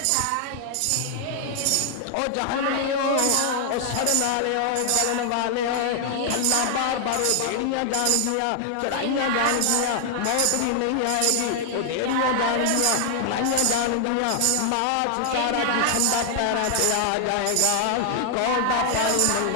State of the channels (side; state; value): both; different; correlation 0.00